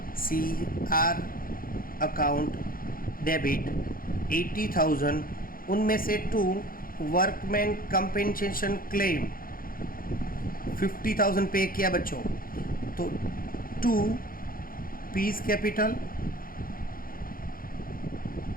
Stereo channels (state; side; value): late; right; 0.42 ms